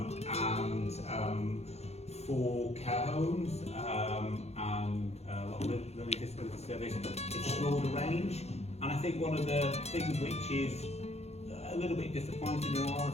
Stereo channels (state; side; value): late; right; 0.31 ms